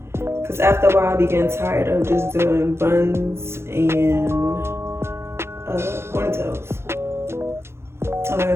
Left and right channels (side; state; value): left; late; 0.12 ms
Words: Because after a while, I be getting tired of just doing buns and ponytails. And like I